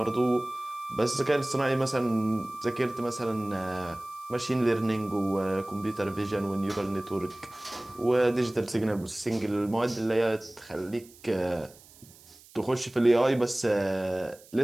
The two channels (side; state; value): right; noise; hiss, 24 dB below the sound